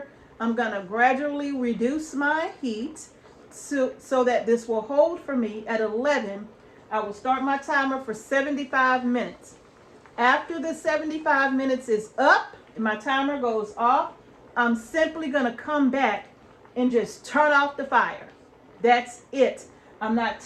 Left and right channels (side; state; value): both; identical; correlation 1.00